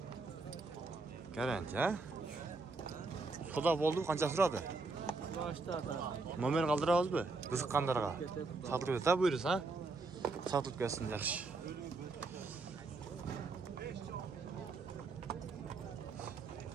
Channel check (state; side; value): quieter; left; 3.7 dB